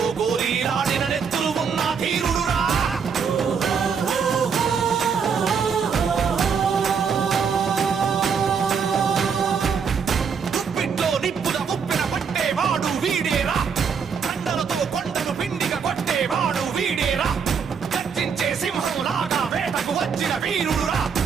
గోరీలాడిన నెత్తులు ఉన్న ధీరుడురా గుప్పిట్లో నిప్పుల ఉప్పిన పట్టేవాడు వీడేరా కండలతో కొండను పిండిగా కొట్టేవాడు వీడేరా గర్జించే సింహంలాగా వేటకు వచ్చిన వీరుడురా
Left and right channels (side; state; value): left; quieter; 6.3 dB